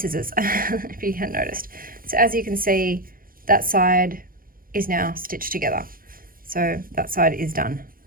if you hadn't noticed. So as you can see, that side is now stitched together. So that side is done.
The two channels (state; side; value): late; left; 0.41 ms